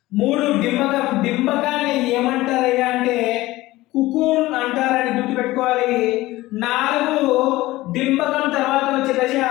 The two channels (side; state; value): right; quieter; 18.0 dB